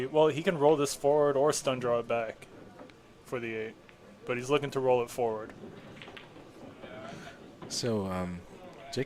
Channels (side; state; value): both; identical; correlation 1.00